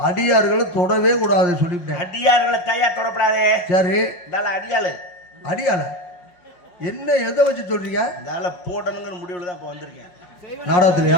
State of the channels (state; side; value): late; right; 5.6 ms